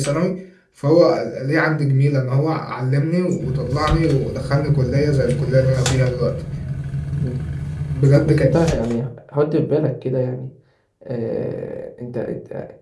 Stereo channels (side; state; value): both; identical; correlation 1.00